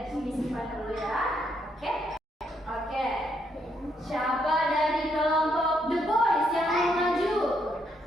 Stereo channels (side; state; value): both; normal; correlation 0.75